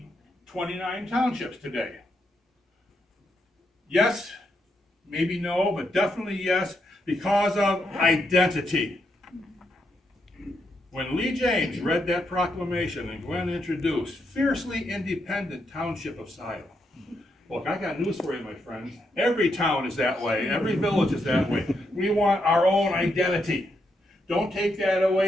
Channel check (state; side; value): normal; both; correlation 0.80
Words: 29 townships today? Yes, maybe no, but definitely yes, because of identity. When Lee James read that proclamation and Glenn introduced Fiercely Independent Township of Scio. Look, I got news for you, my friends. Every town is that way. Every village is that way. We want our own identity. Don't take that